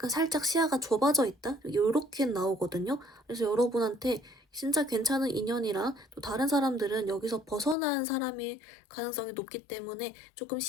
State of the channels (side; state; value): right; drops out; at 7.8 s